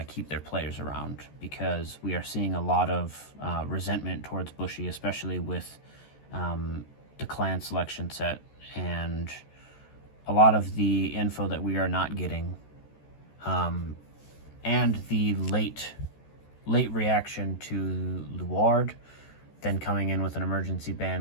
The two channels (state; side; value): late; right; 14 ms